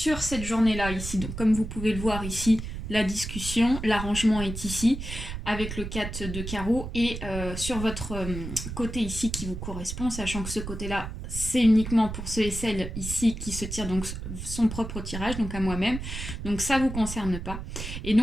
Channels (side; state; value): right; noise; rumble, 7 dB below the sound